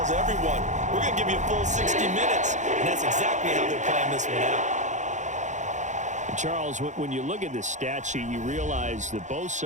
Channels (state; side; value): late; left; 0.35 ms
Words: everyone, we're going to give you a full 60 minutes, and that's exactly how they're playing this one out. Charles, when you look at the stat sheet, you realize that both